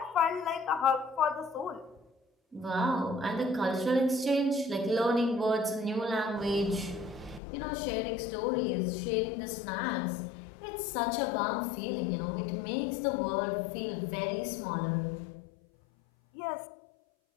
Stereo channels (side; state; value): right; drops out; at 7.4 s